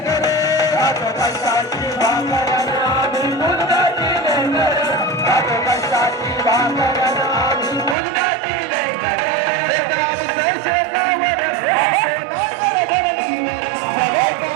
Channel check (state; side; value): drops out; left; at 8.0 s